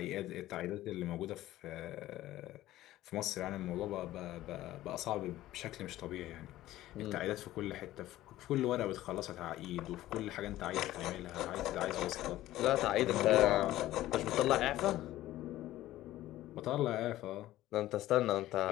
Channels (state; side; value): quieter; right; 15.1 dB